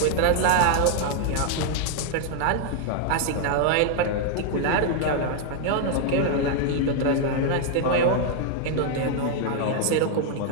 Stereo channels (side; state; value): both; different; correlation 0.00